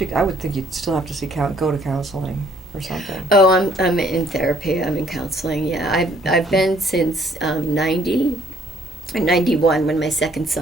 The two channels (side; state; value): both; normal; correlation 0.63